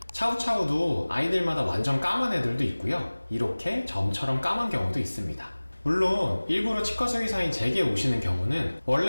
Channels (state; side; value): inverted; both; correlation -1.00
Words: 차우차우도 아이들마다 완전 까만 애들도 있고요. 이렇게 점처럼 까만 경우도 있습니다. 물론 일부러 치과 수의사인 제게 오시는 경우는